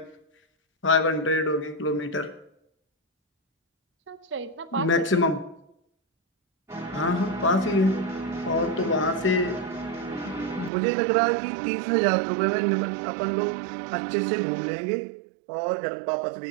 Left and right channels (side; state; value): left; drops out; at 10.7 s